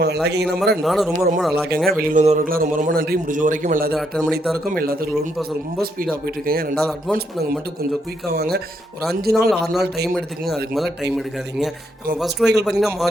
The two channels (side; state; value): both; normal; correlation 0.75